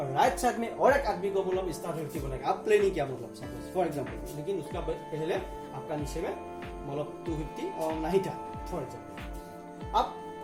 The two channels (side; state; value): both; identical; correlation 1.00